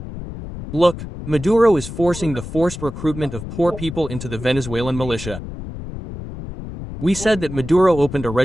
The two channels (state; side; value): noise; left; rumble, 10 dB below the sound